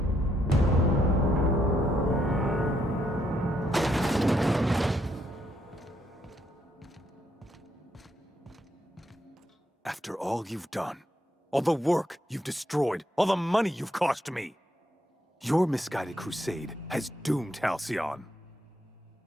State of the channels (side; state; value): both; normal; correlation 0.75